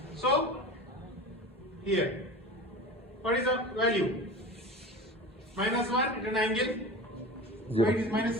So, here, what is the value? Minus 1 at an angle. Zero. Y is minus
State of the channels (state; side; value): normal; both; correlation 0.33